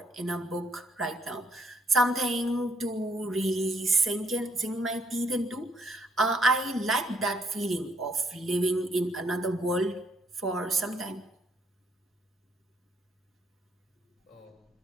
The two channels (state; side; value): normal; both; correlation 0.69